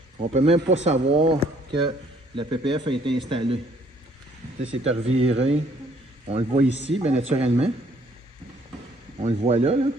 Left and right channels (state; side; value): normal; both; correlation 0.63